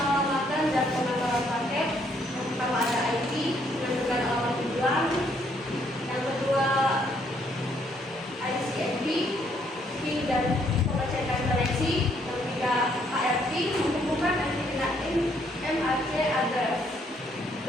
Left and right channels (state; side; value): normal; both; correlation 0.69